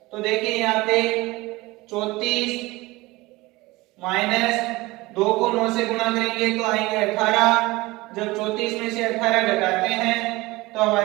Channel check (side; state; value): left; quieter; 21.0 dB